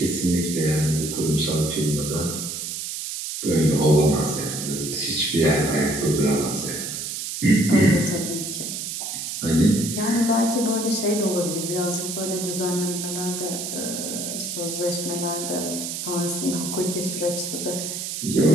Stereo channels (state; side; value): noise; right; hiss, 5 dB below the sound